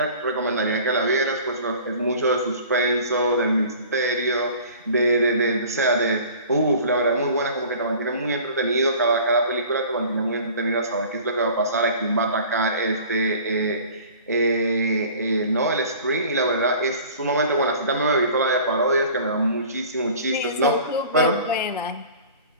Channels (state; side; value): inverted; both; correlation -0.45